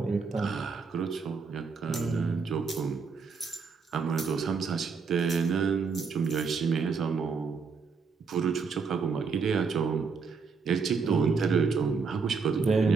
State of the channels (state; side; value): quieter; left; 5.2 dB